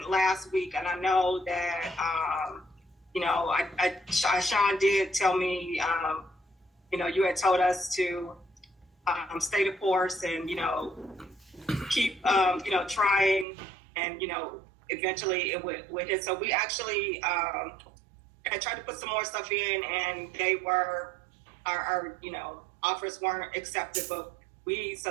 last week, and I know that, Sean did tell me, you had told us to stay the course and, keep, trying, and, eventually it would hit. So we actually I tried to put some more stuff in, and they were, our offers weren't accepted, but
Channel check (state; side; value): drops out; left; at 13.5 s